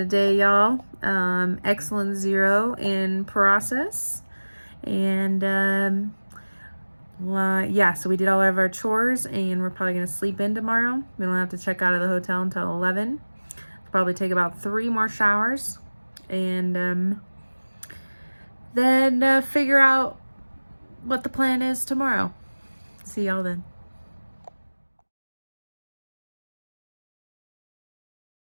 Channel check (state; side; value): inverted; both; correlation -1.00